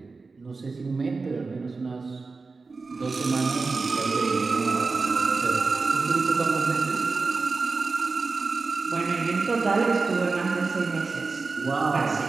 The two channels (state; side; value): quieter; left; 4.1 dB